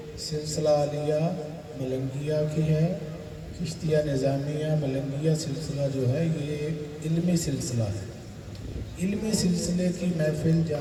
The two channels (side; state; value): both; identical; correlation 1.00